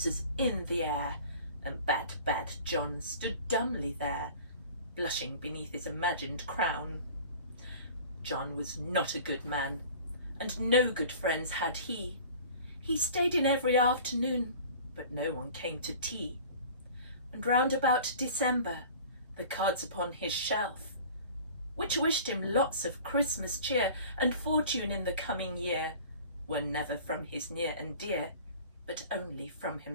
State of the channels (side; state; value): both; inverted; correlation -0.43